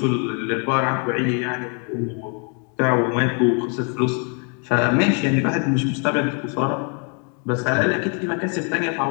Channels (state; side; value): quieter; right; 38.2 dB